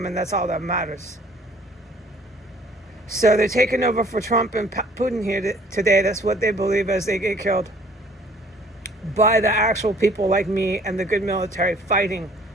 and that's all that matters. So they're taking over for Trump and Putin here today. That's what they believe as they get killed by the actual people like me and the good military fighting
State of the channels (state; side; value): normal; both; correlation 0.56